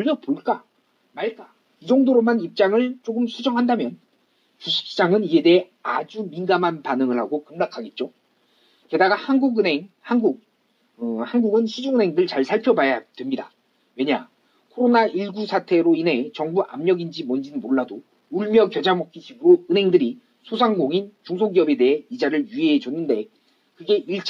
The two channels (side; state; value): both; identical; correlation 1.00